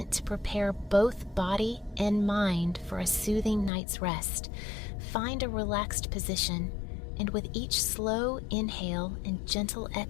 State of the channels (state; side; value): drops out; right; at 3.7 s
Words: to prepare both body and mind for a soothing night's rest. Find a relaxed position, and with each slow inhale and gentle